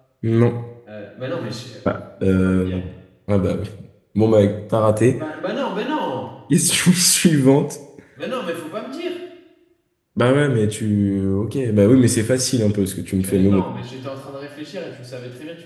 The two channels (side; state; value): both; identical; correlation 1.00